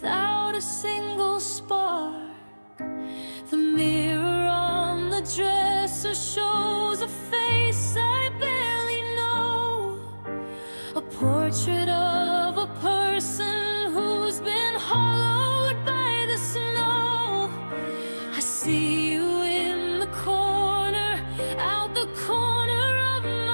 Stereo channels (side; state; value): both; inverted; correlation -1.00